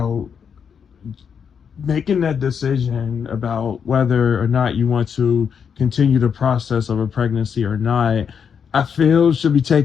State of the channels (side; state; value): right; quieter; 7.0 dB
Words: making that decision about whether or not you want to continue the process of a pregnancy or not, I feel should be